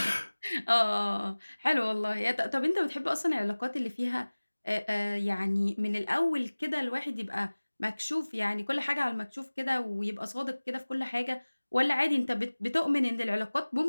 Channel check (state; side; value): inverted; both; correlation -1.00